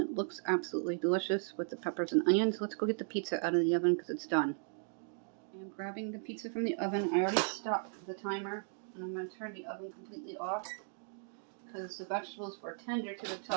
looks absolutely delicious with the peppers and onions. Let's go get the pizza out of the oven because it's done. I am grabbing the pizza from the oven. I already stopped the timer, and I'm going to turn the oven completely off because the vegetables were tender to the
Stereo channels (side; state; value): left; silent; 53 dB below the other